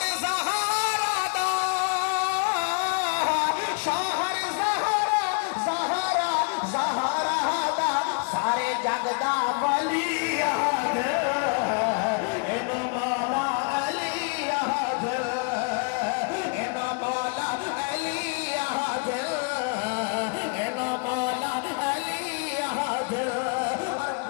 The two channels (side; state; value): right; quieter; 36.3 dB